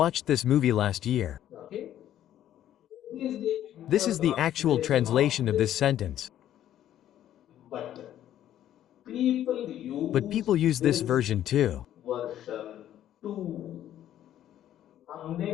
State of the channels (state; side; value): quieter; right; 11.7 dB